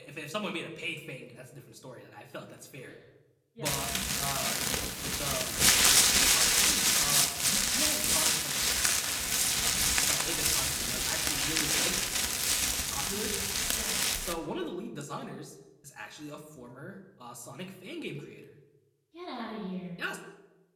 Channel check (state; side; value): identical; both; correlation 1.00